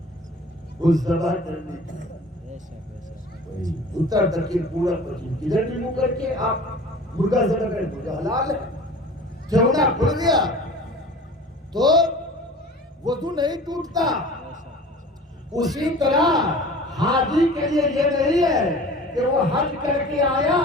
اس ذبح کرنے کی۔ اتر دکن پورا پچھم کدھر بھی منہ کر کے آپ مرغا ذبح کریں تو حلال ہے۔ ٹھیونا کھل گیا تو وضو نہیں ٹوٹتا۔ اسی طرح حاجی کے لیے یہ نہیں ہے کہ وہ حج کر کے آیا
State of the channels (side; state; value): both; normal; correlation 0.42